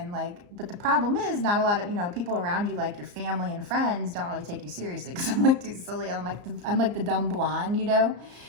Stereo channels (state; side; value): late; left; 34 ms